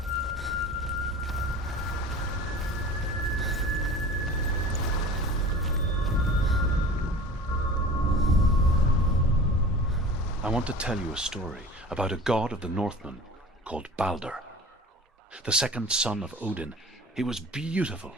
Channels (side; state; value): both; normal; correlation 0.40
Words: I want to tell you a story about a god of the Northmen called Balder. The second son of Odin. He was beautiful,